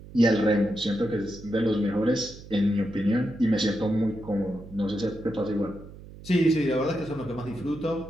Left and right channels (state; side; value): noise; right; hum, 17 dB below the sound